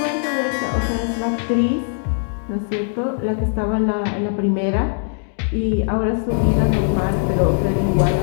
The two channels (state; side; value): silent; right; digital silence